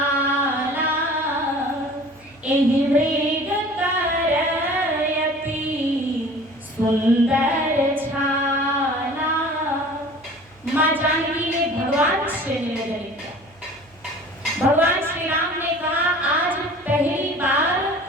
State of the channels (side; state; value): right; noise; hum, 29 dB below the sound